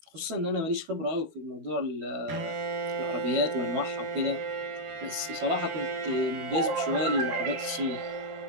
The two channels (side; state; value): left; late; 12 ms